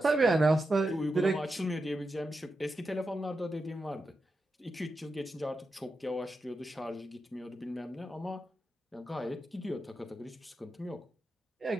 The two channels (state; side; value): normal; both; correlation 0.88